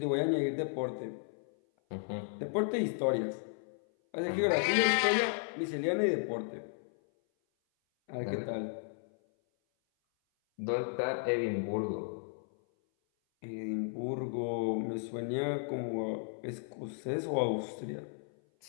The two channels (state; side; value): silent; right; 55 dB below the other